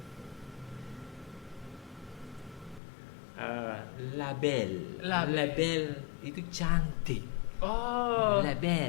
label itu cantik. Oh.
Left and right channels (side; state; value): right; drops out; at 2.8 s